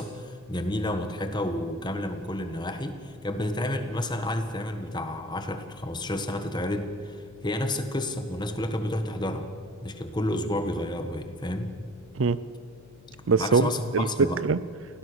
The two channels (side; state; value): left; noise; hum, 23 dB below the sound